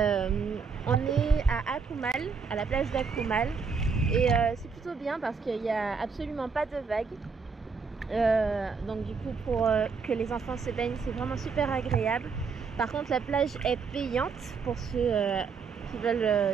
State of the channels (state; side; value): quieter; left; 5.3 dB